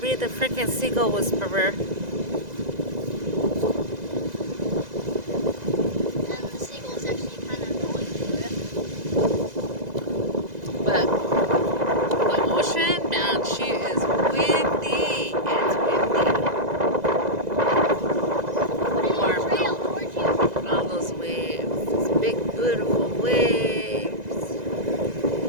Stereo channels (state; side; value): late; left; 2.0 ms